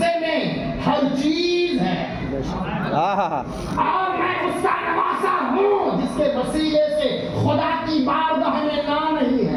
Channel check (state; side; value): identical; both; correlation 1.00